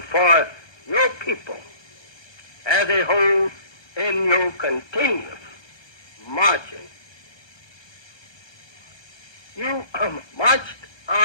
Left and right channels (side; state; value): right; late; 1.2 ms